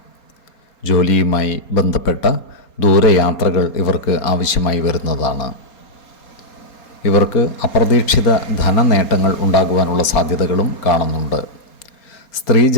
ജോലിയുമായി ബന്ധപ്പെട്ട ദൂരയാത്രകൾ ഇവർക്ക് ആവശ്യമായി വരുന്നതാണ്. ഇവർക്ക് അപ്രതീക്ഷിത ധനനേട്ടങ്ങൾ ഉണ്ടാകുവാനുള്ള സാധ്യതകളും കാണുന്നുണ്ട്.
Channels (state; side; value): late; right; 4.3 ms